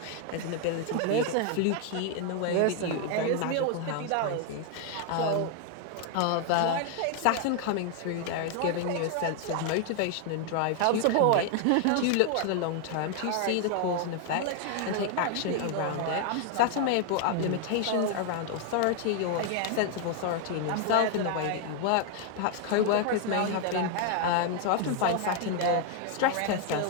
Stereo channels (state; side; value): different; both; correlation 0.00